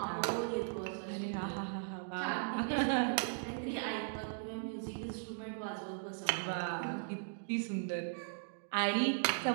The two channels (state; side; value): silent; left; digital silence